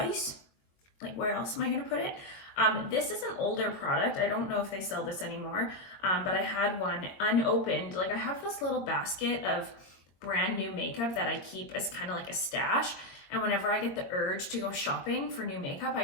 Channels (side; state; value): right; late; 22 ms